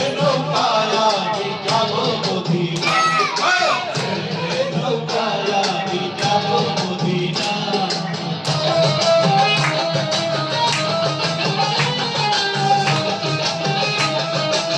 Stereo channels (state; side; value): identical; both; correlation 1.00